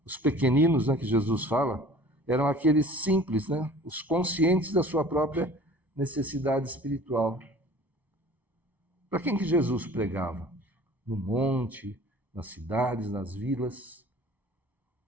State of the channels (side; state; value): left; late; 1.0 ms